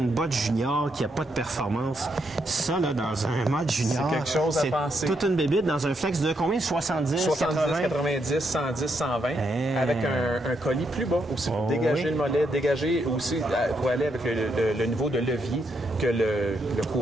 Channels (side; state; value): both; normal; correlation 0.79